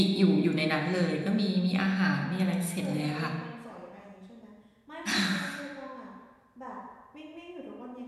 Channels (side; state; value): both; identical; correlation 1.00